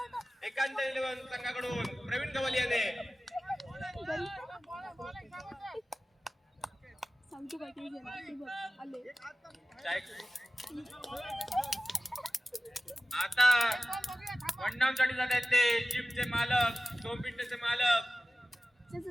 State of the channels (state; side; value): normal; both; correlation 0.96